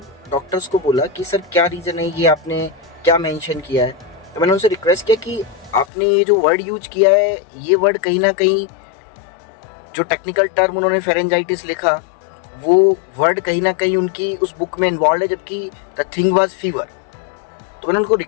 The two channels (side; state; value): right; drops out; at 5.9 s